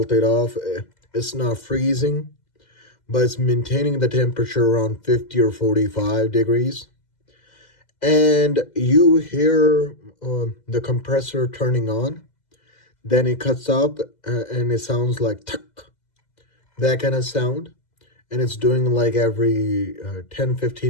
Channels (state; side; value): late; right; 2.0 ms